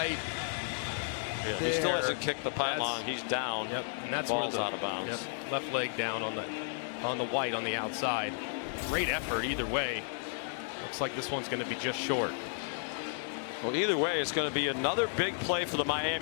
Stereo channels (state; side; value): silent; right; digital silence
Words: Yeah, he still hasn't kicked the pylon. He's down. Yep, and that's ball's where out of bounds. Yep, left leg down on the white on the outside. Great effort either way. Looks like this one's going to be just short. Well, either way, it's going to be another big play for the